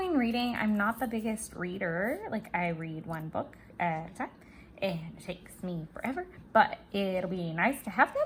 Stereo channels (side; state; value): both; identical; correlation 1.00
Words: reading. I'm not the biggest reader. Like I read one book at a time and it takes me forever, but it'll be nice to have